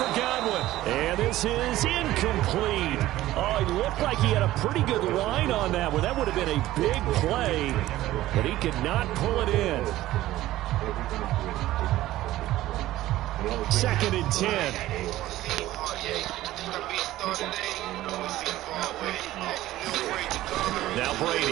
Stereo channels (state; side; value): quieter; left; 15.4 dB